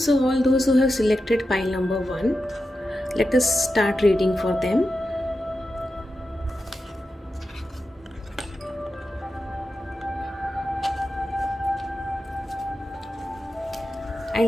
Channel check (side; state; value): both; normal; correlation 0.90